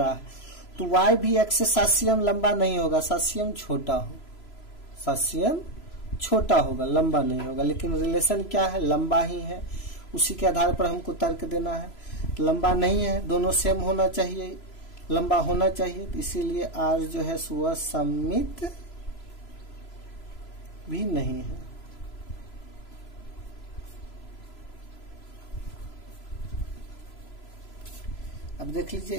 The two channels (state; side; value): late; right; 3.0 ms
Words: है, तो वाई भी एक्स से 7 cm लंबा नहीं होगा, 7 cm छोटा हो, 7 cm छोटा होगा, लंबा नहीं होगा। लेकिन रिलेशन क्या है, लंबा ही है, उसी के आधार पर हमको तर्क देना है। लंबा नहीं है, दोनों सेम होना चाहिए, लंबा होना चाहिए, तो इसीलिए आर जो है वह सम्मित भी नहीं है। अब देख लीजिए